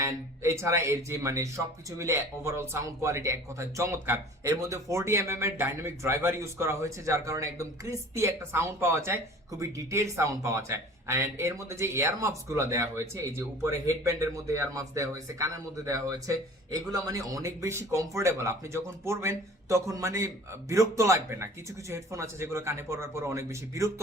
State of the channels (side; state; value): both; normal; correlation 0.45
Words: এন্ড এছাড়া এর যে মানে সবকিছু মিলে ওভারঅল সাউন্ড কোয়ালিটি এক কথায় চমৎকার। এর মধ্যে 40mm এর ডাইনামিক ড্রাইভার ইউজ করা হয়েছে, যার কারণে একদম ক্রিস্পি একটা সাউন্ড পাওয়া যায়, খুবই ডিটেইল সাউন্ড পাওয়া যায়। এন্ড এর মধ্যে যে এয়ার মাফস গুলো দেওয়া হয়েছে, এই যে উপরে হেডব্যান্ডের মধ্যে এয়ার মাফস দেওয়া হয়েছে, কানের মধ্যে দেওয়া হয়েছে, এগুলো মানে অনেক বেশি কমফোর্টেবল। আপনি যখন পরবেন তখন মানে বিরক্ত লাগবে না। কিছু কিছু হেডফোন আছে যেগুলো কানে পরার পর অনেক বেশি বিরক্ত